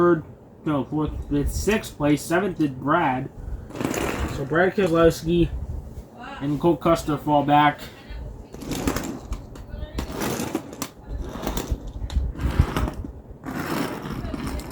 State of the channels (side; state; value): both; identical; correlation 1.00